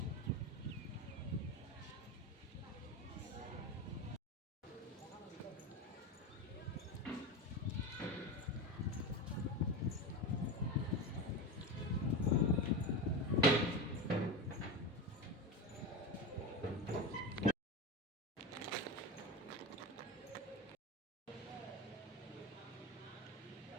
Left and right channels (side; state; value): both; normal; correlation 0.21